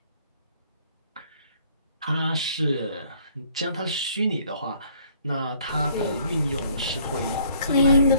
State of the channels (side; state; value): both; inverted; correlation -0.62